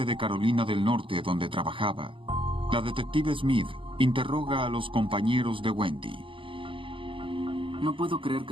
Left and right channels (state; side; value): late; left; 0.25 ms